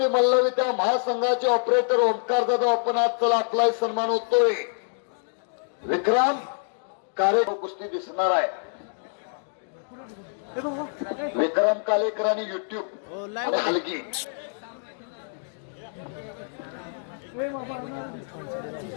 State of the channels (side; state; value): right; silent; digital silence